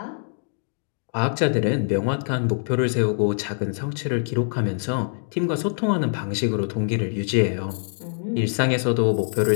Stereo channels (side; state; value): right; silent; digital silence